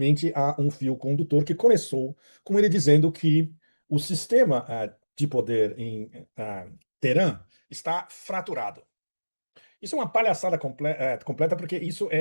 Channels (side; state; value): both; inverted; correlation -1.00